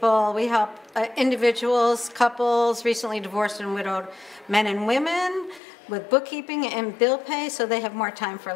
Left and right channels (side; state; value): right; drops out; at 5.6 s